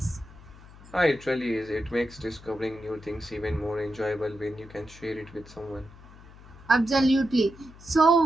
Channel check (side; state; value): left; noise; hum, 20 dB below the sound